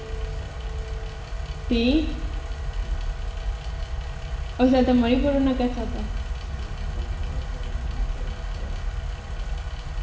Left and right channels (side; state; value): both; identical; correlation 1.00